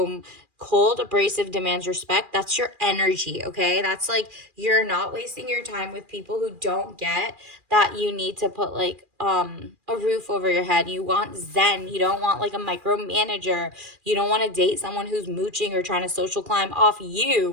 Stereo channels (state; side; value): late; left; 2.4 ms